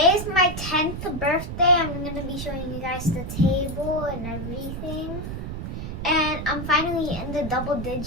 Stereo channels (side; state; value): right; noise; rumble, 6 dB below the sound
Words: is my 10th birthday. I'm going to be showing you guys the table and everything. And I'm finally in the double